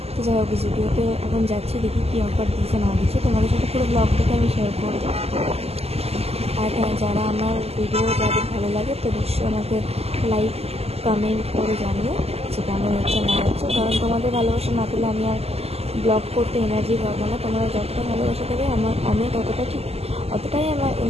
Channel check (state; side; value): late; left; 0.29 ms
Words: তো যাই হোক, জুডিওতে এখন যাচ্ছি, দেখি কী অফার দিচ্ছে না দিচ্ছে, তোমাদের সাথে পুরো ব্লগটাকে আমি শেয়ার করবো। আর হ্যাঁ, যারা আমার ভিডিও যাদের ভালো লাগে তো নিশ্চয়ই আমাকে লাইক কমেন্ট করে জানিও যে কেমন হচ্ছে না হচ্ছে। কারণ তোমাদের ভালোবাসা না পেলে আমি আর ব্লগ করতে এনার্জি পাবো না। তোমরা যতটা ভালোবাসা দেবে আমি অতটাই আমার